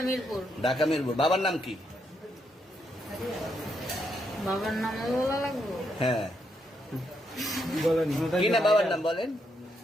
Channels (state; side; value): normal; both; correlation 0.79